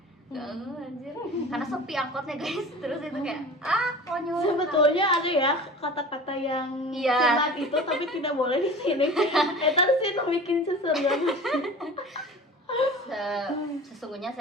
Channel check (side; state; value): both; normal; correlation 0.38